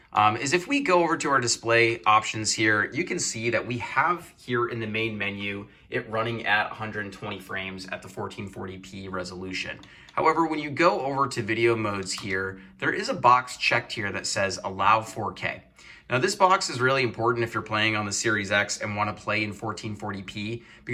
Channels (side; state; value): both; identical; correlation 1.00